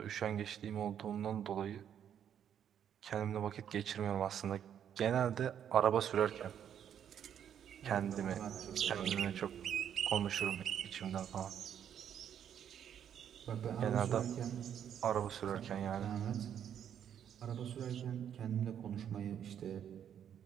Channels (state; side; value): quieter; left; 9.2 dB